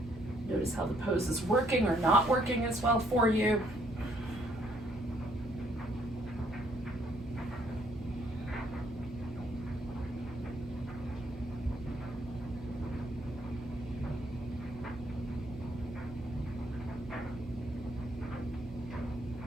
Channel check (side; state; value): both; normal; correlation 0.68